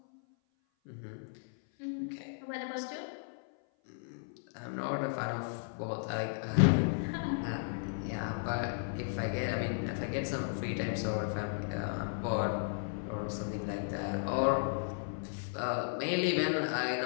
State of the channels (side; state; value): right; silent; 55 dB below the other